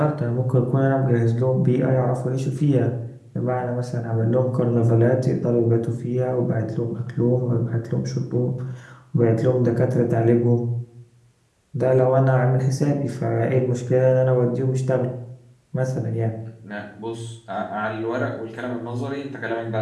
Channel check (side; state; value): both; identical; correlation 1.00